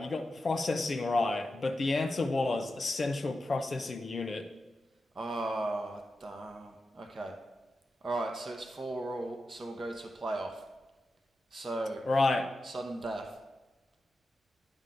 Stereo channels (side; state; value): both; normal; correlation 0.91